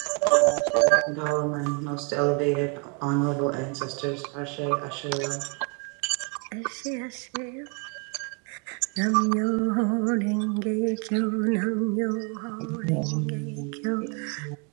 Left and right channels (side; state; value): left; quieter; 34.3 dB